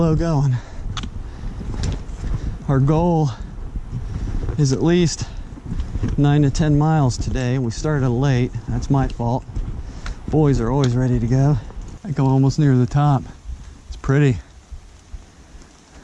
going. Our goal is at least 9 to 10 miles today. We started late. That's my fault. Boys are always ready to go. I think I'm almost near the top. It's pretty.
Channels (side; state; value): both; identical; correlation 1.00